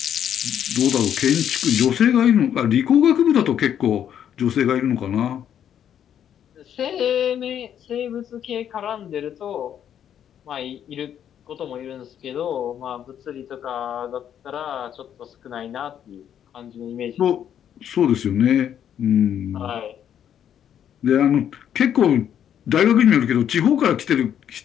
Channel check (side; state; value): right; quieter; 9.6 dB